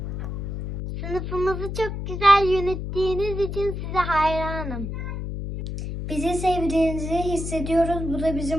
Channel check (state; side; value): noise; left; hum, 5 dB below the sound